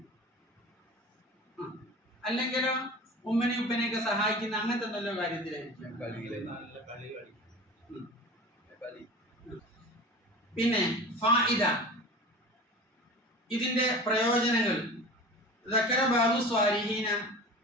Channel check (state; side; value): normal; both; correlation 0.36